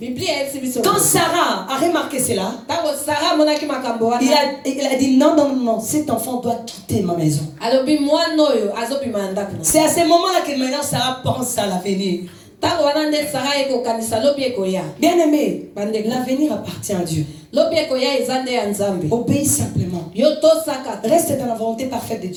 quand Sarah a remarqué cela, il a dit non, cet enfant doit quitter ma maison. C'est à ce moment-là que maintenant Sarah pense à l'avenir. Bien aimé, l'avenir appartient à Dieu. Obéis simplement. Reste dans la volonté parfaite de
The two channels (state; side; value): identical; both; correlation 1.00